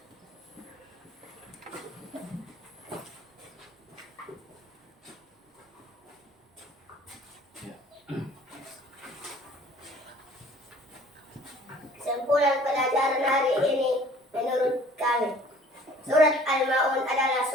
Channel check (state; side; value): normal; both; correlation 0.52